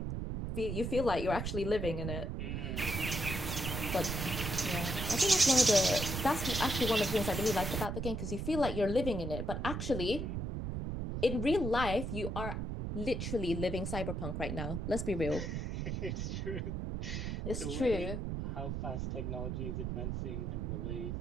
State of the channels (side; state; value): right; noise; rumble, 3 dB below the sound